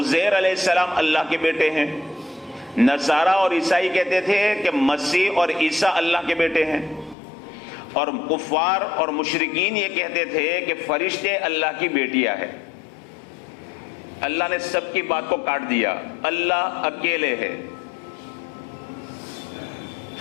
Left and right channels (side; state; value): right; drops out; at 7.2 s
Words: علیہ السلام اللہ کے بیٹے ہیں. نصارہ اور عیسائی کہتے تھے کہ مسیح اور عیسیٰ اللہ کے بیٹے ہیں. اور کفار اور مشرکین یہ کہتے تھے کہ فرشتے اللہ کی بیٹیاں ہیں. اللہ نے سب کی بات کو کاٹ دیا، اللہ اکیلے ہے.